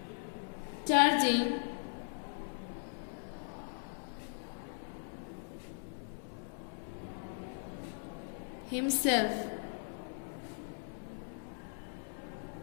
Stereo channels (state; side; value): silent; right; digital silence